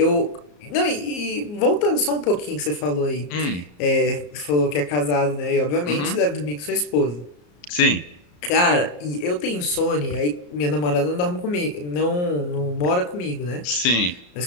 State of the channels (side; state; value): right; late; 34 ms